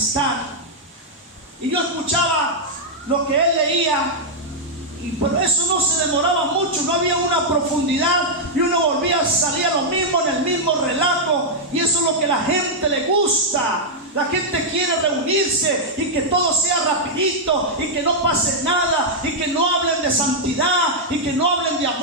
y yo escuchaba lo que él leía, pero eso no se demoraba mucho, no había una profundidad, y uno volvía a salir a lo mismo, en el mismo relato. Y eso es lo que a la gente le gusta. La gente quiere reunirse y que todo sea rapidito y que no pase nada, y que no hablen de santidad y que no hablen de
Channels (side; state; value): both; normal; correlation -0.05